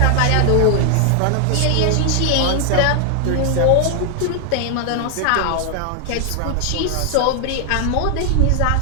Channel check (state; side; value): different; both; correlation 0.00